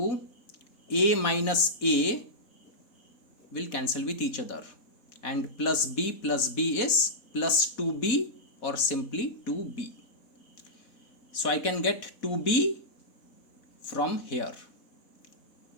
a minus a will cancel with each other, and plus b is plus 2b or simply 2b. So I can get 2b from here.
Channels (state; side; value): late; right; 4.1 ms